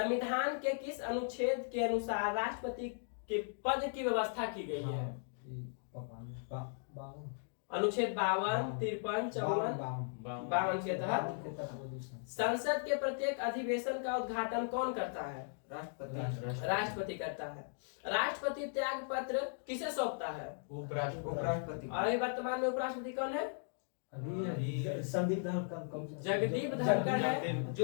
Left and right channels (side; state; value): right; silent; digital silence